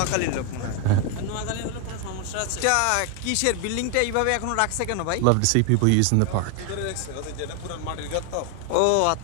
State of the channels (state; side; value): different; both; correlation 0.00